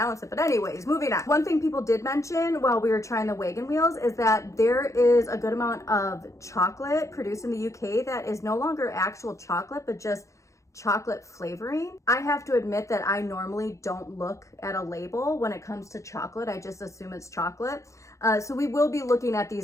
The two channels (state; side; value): late; right; 0.15 ms